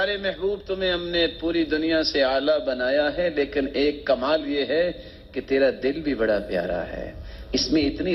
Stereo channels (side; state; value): both; identical; correlation 1.00